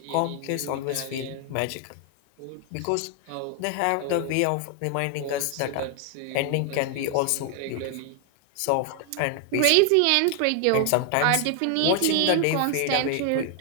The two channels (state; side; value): different; both; correlation 0.00